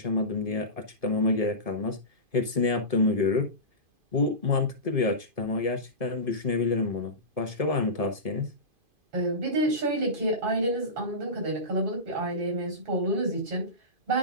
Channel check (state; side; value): late; left; 2.5 ms